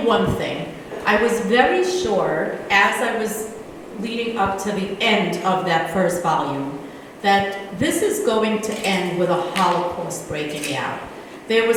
one thing. I was very sure, as I was leading up to the end of that first volume, that this is going to end with a Holocaust breaking out. There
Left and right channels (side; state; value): both; identical; correlation 1.00